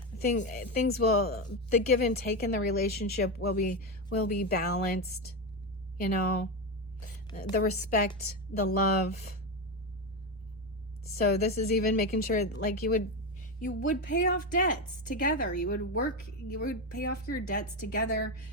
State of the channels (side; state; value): left; noise; rumble, 29 dB below the sound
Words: things will, the give and take in the relationship will be balanced, you know? The respect, the love. So this is even making sure, like, you would pay off debts together. You would pay off your debts together